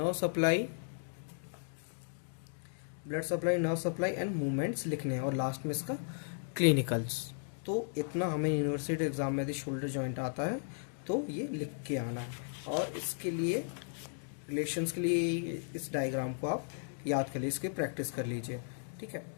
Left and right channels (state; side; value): silent; right; digital silence